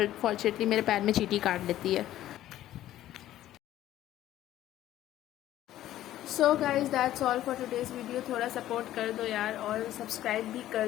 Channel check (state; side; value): quieter; right; 13.4 dB